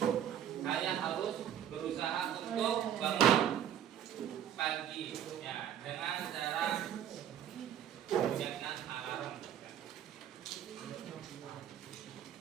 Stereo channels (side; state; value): left; quieter; 10.0 dB